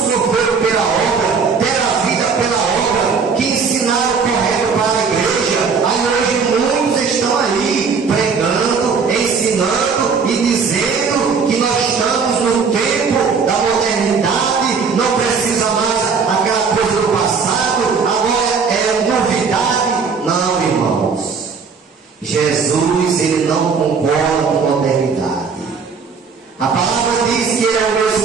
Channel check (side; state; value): left; quieter; 5.4 dB